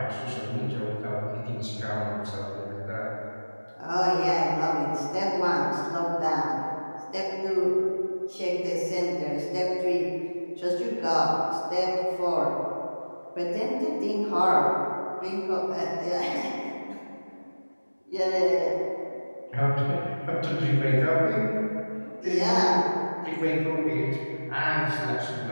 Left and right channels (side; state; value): both; inverted; correlation -1.00